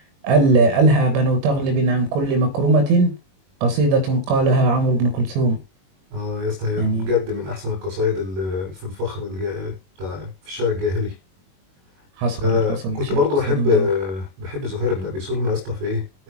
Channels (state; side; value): late; left; 21 ms